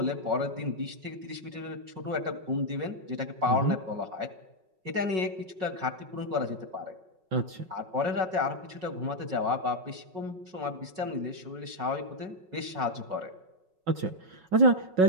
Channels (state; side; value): late; left; 5.4 ms